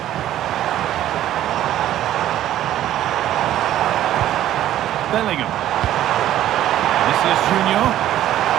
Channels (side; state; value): left; quieter; 12.6 dB